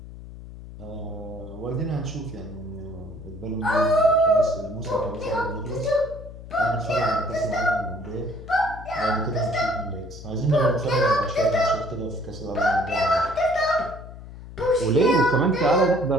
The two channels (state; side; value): noise; left; hum, 14 dB below the sound